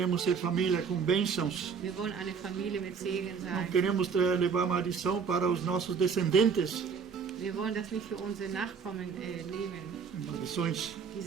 ser família com bênçãos. Wir wollen eine Familie mit Segen Não sein. queremos levar maldição para os nossos descendentes. Wir wollen das nicht für unsere Nachkommen nehmen, Maldições.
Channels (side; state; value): left; quieter; 6.1 dB